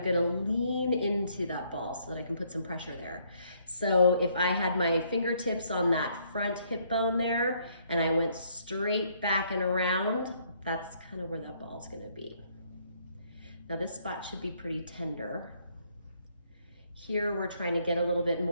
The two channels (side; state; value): both; inverted; correlation -0.68